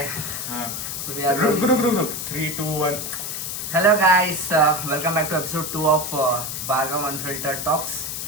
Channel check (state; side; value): noise; left; hiss, 5 dB below the sound